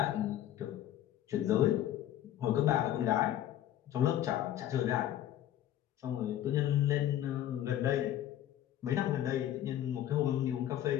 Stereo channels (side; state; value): right; quieter; 12.0 dB